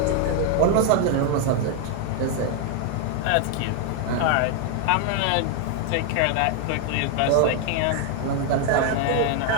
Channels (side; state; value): both; different; correlation 0.00